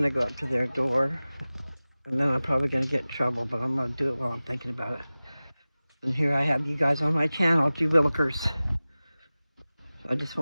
to go up to their door. And then I'm probably going to get in trouble, but I'm going to do it while I'm thinking about it. And here I have you guys on my channel, G Willikers. I just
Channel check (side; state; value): both; inverted; correlation -0.98